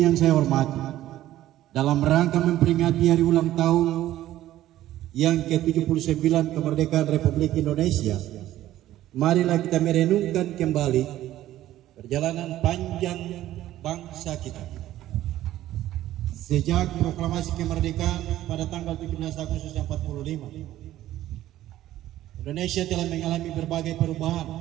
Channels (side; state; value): left; quieter; 13.9 dB